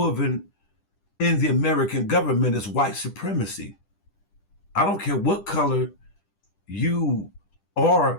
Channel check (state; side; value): late; right; 10 ms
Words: in the American government is white supremacy. I don't care what color you